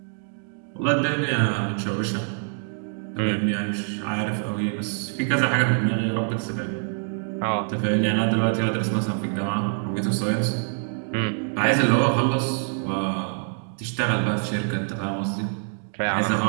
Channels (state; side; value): silent; left; 56 dB below the other